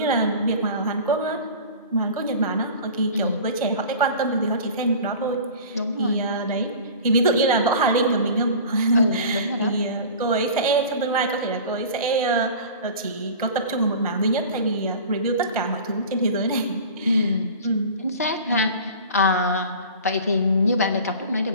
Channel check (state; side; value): inverted; both; correlation -0.38